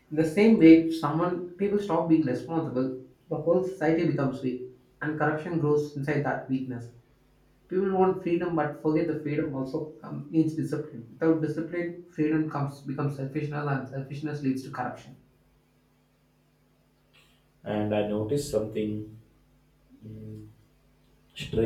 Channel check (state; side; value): identical; both; correlation 1.00